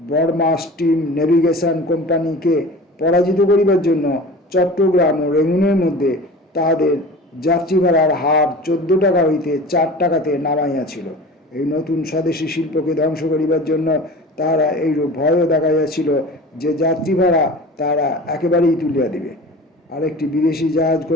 স্টিম নেভিগেশন কোম্পানিকে পরাজিত করিবার জন্য চট্টগ্রাম ও রেঙ্গুনের মধ্যে তাহাদের যাত্রী ভাড়ার হার 14 টাকা হইতে 4 টাকাতে নামাইয়াছিল। এই নতুন স্বদেশী শিল্পকে ধ্বংস করিবার জন্য তাহারা এইরূপ ভয়ও দেখাইয়াছিল যে যাত্রী ভাড়া তাহারা একেবারেই তুলিয়া দিবে। আরেকটি বিদেশি জাহাজ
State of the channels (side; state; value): both; normal; correlation 0.38